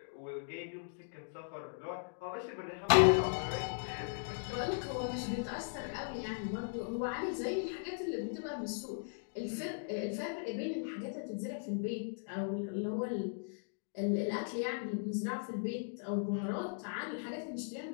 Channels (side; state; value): right; silent; digital silence